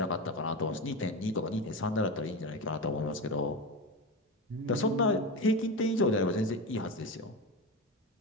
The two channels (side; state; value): both; normal; correlation 0.21